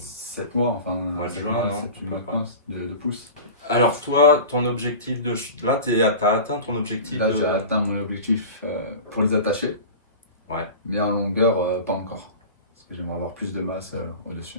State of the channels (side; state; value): both; inverted; correlation -0.35